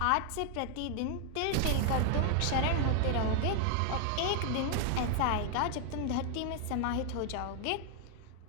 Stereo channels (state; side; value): different; both; correlation 0.00